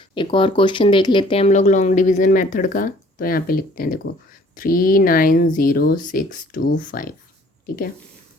एक और क्वेश्चन देख लेते हैं हम लोग लॉन्ग डिवीज़न मेथड का। तो यहाँ पे लिखते हैं, देखो 390625। ठीक है,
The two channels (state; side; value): normal; both; correlation 0.56